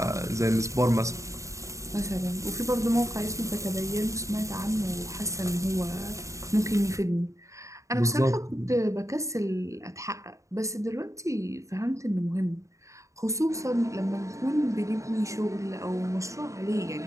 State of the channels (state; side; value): late; left; 0.15 ms